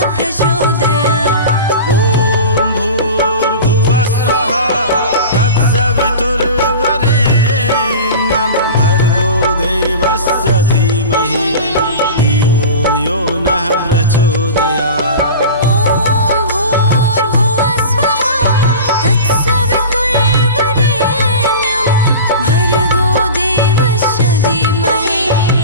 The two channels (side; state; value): both; inverted; correlation -0.33